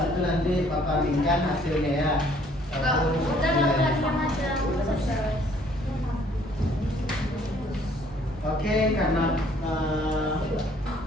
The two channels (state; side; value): normal; both; correlation 0.61